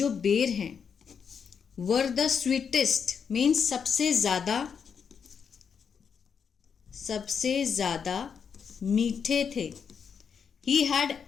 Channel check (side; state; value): right; quieter; 6.7 dB